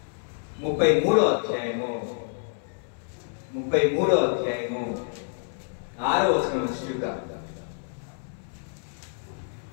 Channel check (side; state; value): right; silent; 60 dB below the other